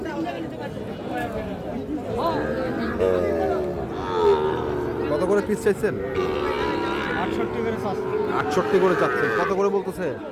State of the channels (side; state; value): both; identical; correlation 1.00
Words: কত করে পিস চাইছেন? 68 করে চাচ্ছেন। কত করে বলতেছে?